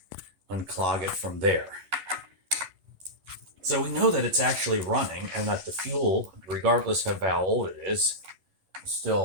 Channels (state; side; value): late; left; 11 ms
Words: it from there. So we know that it's actually running and that the fuel, regardless of how old it is